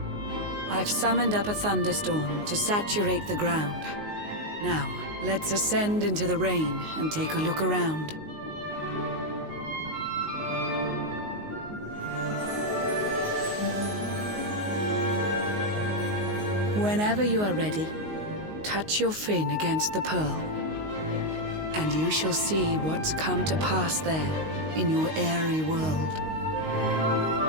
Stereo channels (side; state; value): left; late; 19 ms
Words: I've summoned up a thunderstorm to saturate the ground. Now, let's ascend into the rain and take a look around. Whenever you are ready, touch your fin against the pearl, and you shall see what's come to pass there in your airy world.